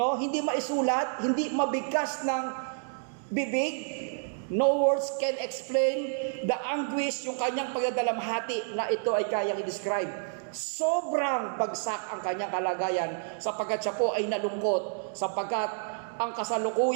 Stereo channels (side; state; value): left; silent; digital silence